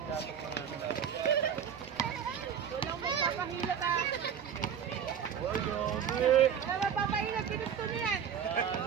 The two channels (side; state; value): left; quieter; 8.1 dB